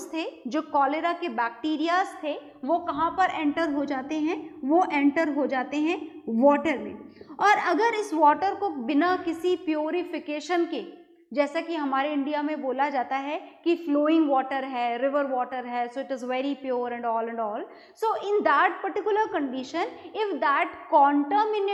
थे, जो कॉलेरा के बैक्टीरियाज थे, वो कहाँ पर एंटर हो जाते हैं, वो एंटर हो जाते हैं वाटर में। और अगर इस वाटर को बिना किसी प्योरिफिकेशन के, जैसा कि हमारे इंडिया में बोला जाता है कि फ्लोइंग वाटर है, रिवर वाटर है, so it is very pure and all, so in that particular condition, if that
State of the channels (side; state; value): both; identical; correlation 1.00